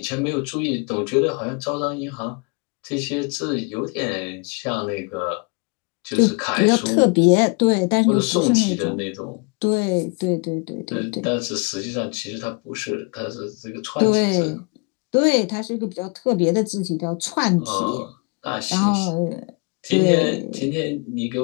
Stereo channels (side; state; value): right; quieter; 32.2 dB